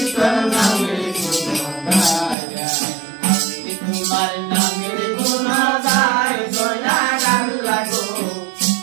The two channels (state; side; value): drops out; left; at 2.4 s